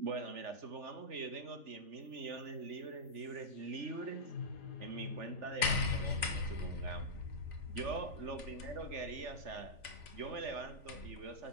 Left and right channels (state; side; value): late; left; 3.4 ms